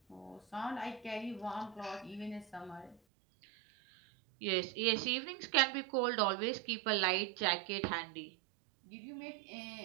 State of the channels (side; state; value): left; drops out; at 3.0 s